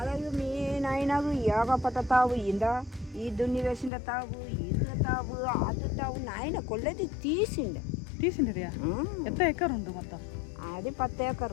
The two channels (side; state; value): right; drops out; at 3.9 s